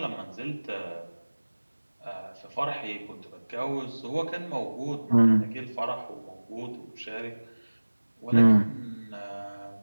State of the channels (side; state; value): both; inverted; correlation -1.00